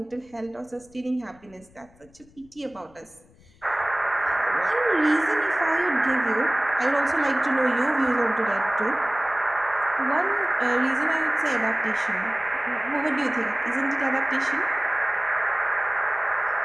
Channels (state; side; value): noise; left; rumble, 28 dB below the sound